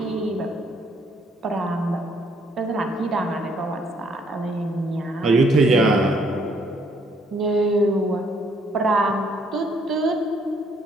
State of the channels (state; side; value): normal; both; correlation 0.67